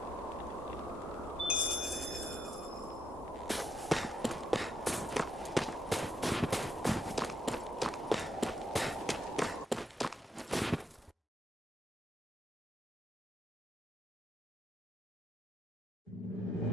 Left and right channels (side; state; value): both; normal; correlation 0.77